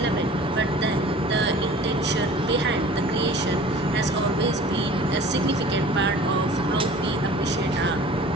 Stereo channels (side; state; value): both; normal; correlation 0.45